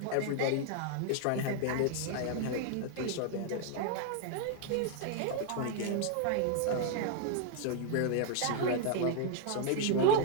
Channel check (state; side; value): different; both; correlation 0.00